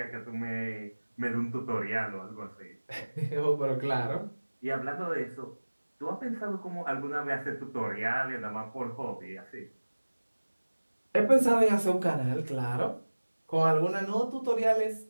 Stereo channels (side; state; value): both; inverted; correlation -1.00